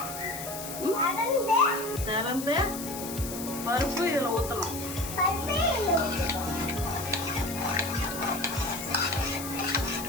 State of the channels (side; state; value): left; noise; hiss, 9 dB below the sound